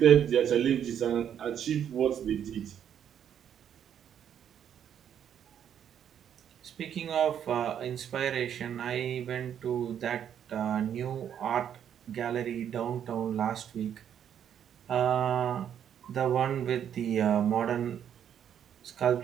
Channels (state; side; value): quieter; left; 9.2 dB